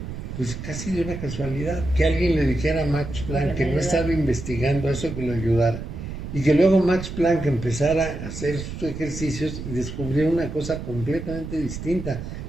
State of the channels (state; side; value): noise; right; rumble, 8 dB below the sound